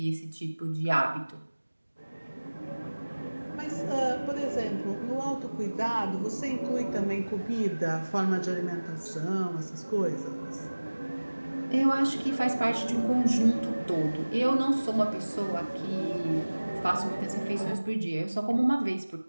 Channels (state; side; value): inverted; both; correlation -1.00